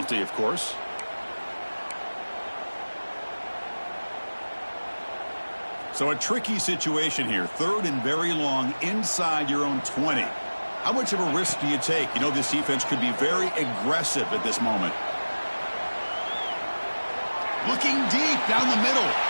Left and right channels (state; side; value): inverted; both; correlation -1.00